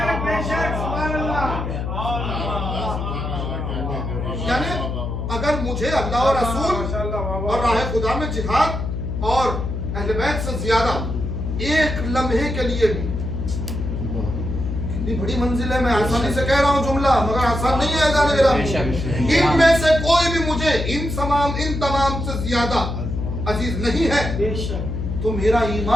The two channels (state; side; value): noise; left; hum, 3 dB below the sound